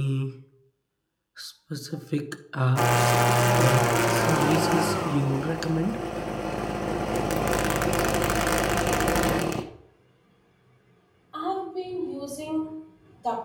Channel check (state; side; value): identical; both; correlation 1.00